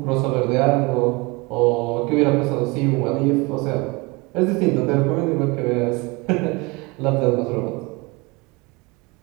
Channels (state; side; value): quieter; left; 26.1 dB